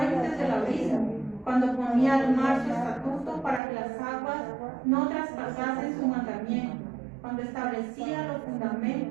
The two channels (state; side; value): drops out; left; at 3.6 s